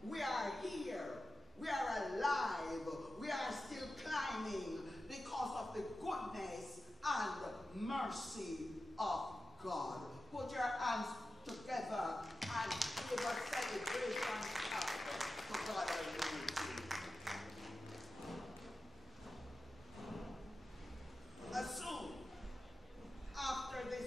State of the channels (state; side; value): normal; both; correlation 0.93